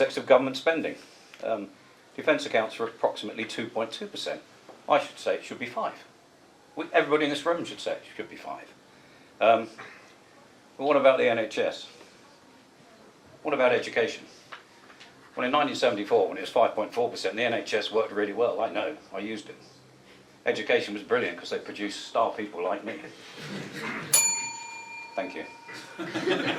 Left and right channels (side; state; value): both; identical; correlation 1.00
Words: of government spending. Defence accounts for approximately 2.2%. I should say it should be 5%. Everybody in this room should say it should be 5%. But what about the NHS? What about education? Well, in 1974, when it was 5.4%, the NHS worked really well. I know, I used it. Education was brilliant because they produced star people like me. Thank you.